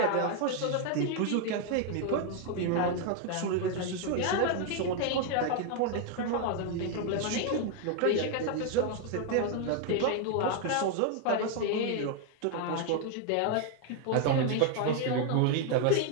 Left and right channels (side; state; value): both; different; correlation 0.01